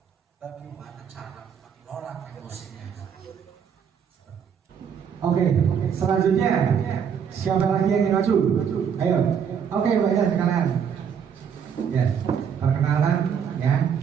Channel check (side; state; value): left; quieter; 7.5 dB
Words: Bagaimana cara mengelola emosinya? Oke, selanjutnya siapa lagi yang ingin maju? Ayo. Oke, Mbak ya sekalian. Ya, perkenalan ya.